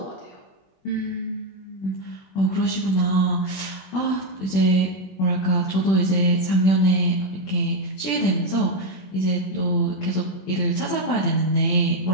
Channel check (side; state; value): right; late; 21 ms